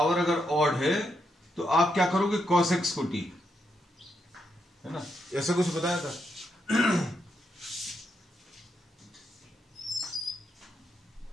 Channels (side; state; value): both; normal; correlation 0.81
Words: अगर ऑड है तो आप क्या करोगे? cos x को t है ना. ऐसा कुछ बताया था.